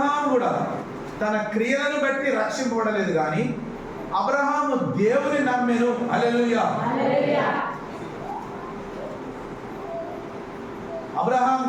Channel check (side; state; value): both; identical; correlation 1.00